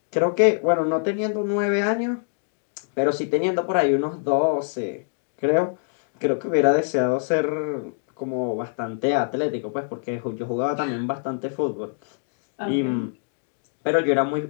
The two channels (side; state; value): right; silent; 62 dB below the other